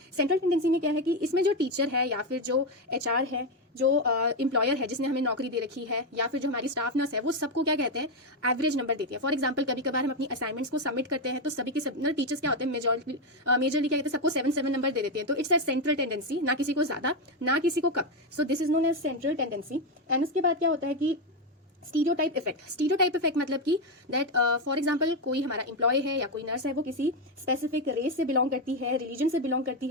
सेंट्रल टेंडेंसी में क्या है कि इसमें जो टीचर है या फिर जो एचआर है, जो एम्प्लॉयर है जिसने हमें नौकरी दे रखी है, या फिर जो हमारी स्टाफ नर्स है, वो सबको क्या कहते हैं, एवरेज नंबर देती है। फॉर एग्जांपल कभी कभार हम अपनी असाइनमेंट्स को सबमिट करते हैं तो सभी के सब टीचर्स क्या होते हैं, मेजरली क्या कहते हैं, सबको 7 नंबर दे देते हैं। तो इट्स अ सेंट्रल टेंडेंसी, ना किसी को ज्यादा ना किसी को कम। So this is known as central tendency. And उसके बाद क्या होता है कि स्टीरियोटाइप इफेक्ट। स्टीरियोटाइप इफेक्ट मतलब कि दैट फॉर एग्जांपल कोई हमारा एम्प्लॉय है या कोई नर्स है, वो किसी स्पेसिफिक रेस से बिलोंग करती है, रिलीजन से बिलोंग करती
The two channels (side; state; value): both; normal; correlation 0.08